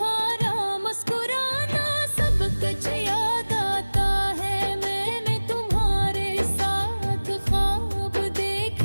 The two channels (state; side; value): inverted; both; correlation -1.00